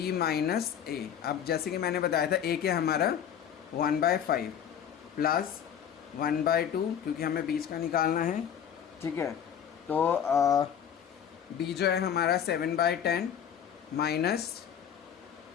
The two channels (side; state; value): right; quieter; 8.7 dB